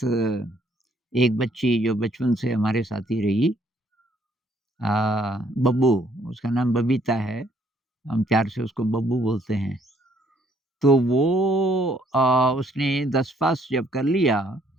एक बच्ची जो बचपन से हमारे साथ ही रही, अ, बब्बू, उसका नाम बबीता है, हम प्यार से उसको बब्बू बोलते हैं। तो वो उसने 10 पास जब कर लिया,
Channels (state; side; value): normal; both; correlation 0.66